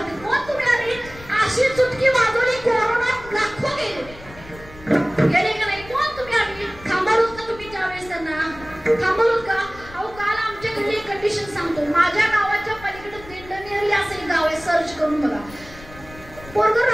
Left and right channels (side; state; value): left; noise; rumble, 19 dB below the sound